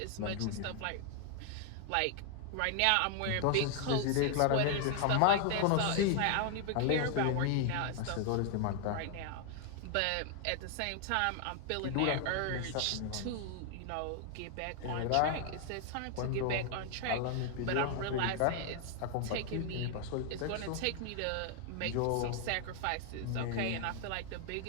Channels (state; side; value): different; both; correlation 0.00